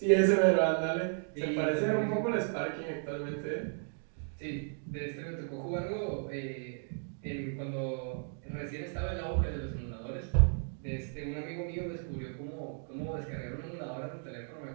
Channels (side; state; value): left; silent; 55 dB below the other